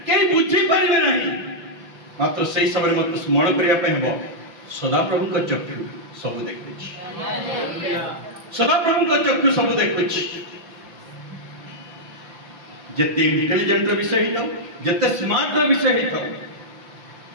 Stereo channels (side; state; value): left; late; 5.7 ms